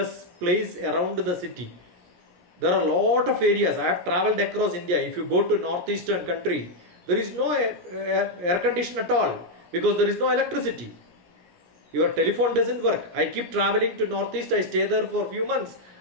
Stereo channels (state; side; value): late; left; 17 ms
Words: place around the city. There are a lot of areas. I have traveled across India. If you go to northeastern country, there is no air condition at all because there is no electricity. Your telephone doesn't work. I keep traveling to northeast. I stay there for a few months.